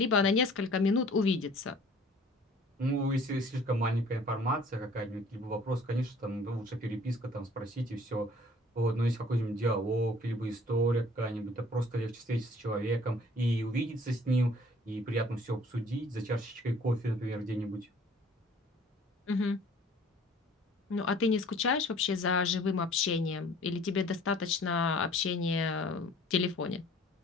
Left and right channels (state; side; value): normal; both; correlation 0.52